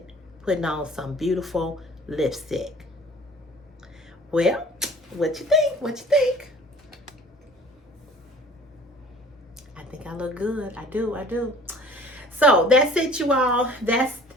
on some beautiful lipstick. Well, what you think? What you think? think I look good. I do. So that's it, you all. That's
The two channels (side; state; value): both; normal; correlation 0.48